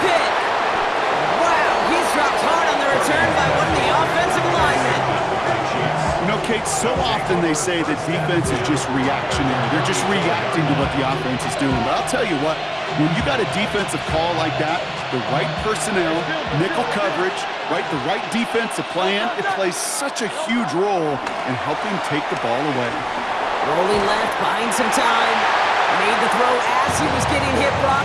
pick. Wow, he's dropped hard on the return by one of the offensive linemen. You know, Kate, so often they say that defense is just reactionary. They're just reacting to what the offense is doing. But I'll tell you what, when you got a defensive call like that, the right personnel, nickel coverage, the right defensive plan, it plays such a huge role in helping take the ball away. Rolling left, buying some time. Made the throw as he was getting hit, Brock,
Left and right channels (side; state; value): both; identical; correlation 1.00